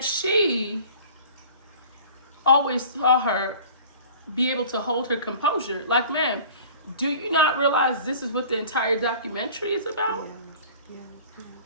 she always saw her be able to hold her composure. Like, ma'am, do you not realize this is what the entire documentary is about? Yeah.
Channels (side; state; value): both; inverted; correlation -0.44